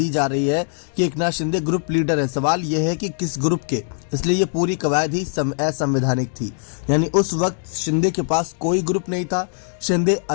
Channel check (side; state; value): right; silent; digital silence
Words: जा रही है कि एकनाथ शिंदे ग्रुप लीडर है। सवाल यह है कि किस ग्रुप के, इसलिए ये पूरी कवायद ही असंवैधानिक थी। यानी उस वक्त शिंदे के पास कोई ग्रुप नहीं था। शिंदे